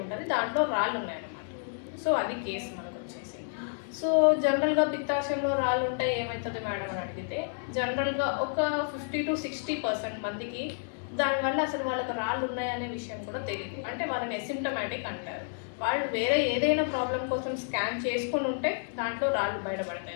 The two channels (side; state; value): right; silent; digital silence